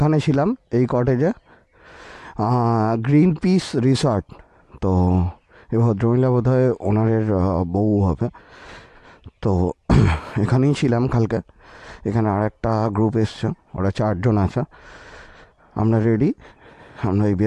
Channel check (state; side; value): identical; both; correlation 1.00